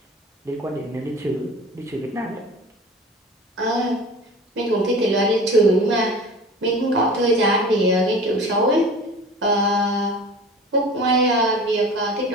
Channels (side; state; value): both; normal; correlation 0.38